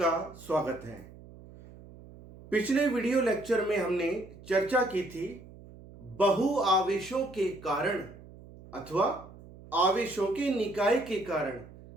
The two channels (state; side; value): noise; right; hum, 19 dB below the sound